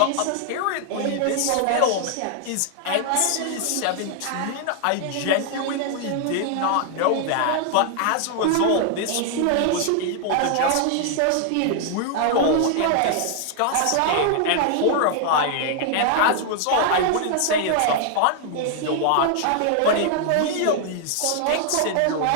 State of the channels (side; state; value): both; different; correlation 0.00